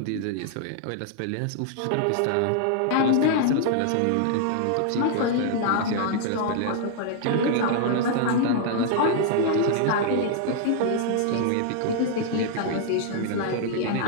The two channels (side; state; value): both; different; correlation 0.00